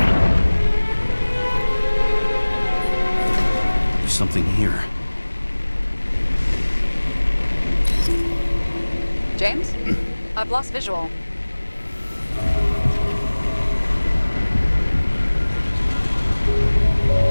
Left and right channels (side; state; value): both; inverted; correlation -1.00